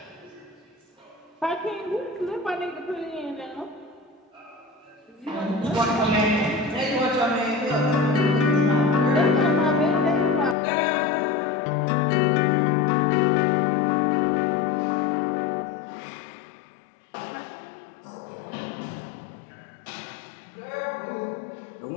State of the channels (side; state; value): right; drops out; at 10.6 s